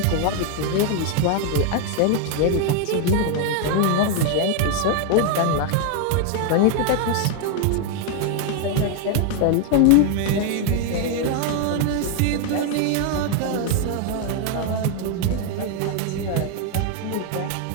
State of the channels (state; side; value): different; both; correlation 0.01